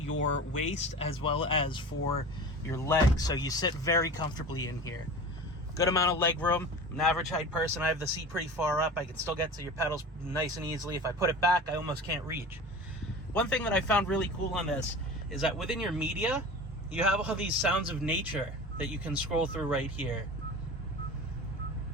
waist as well as for your legs. So you sit very comfortably in here. Good amount of leg room. I'm an average height person. I have the seat pretty far up. I can still get to your pedals nice and easily. If I put it back, I almost can't reach. One thing that I found really cool on this is that within your media, you have all these sounds of nature that you can scroll through right here.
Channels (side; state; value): both; normal; correlation 0.35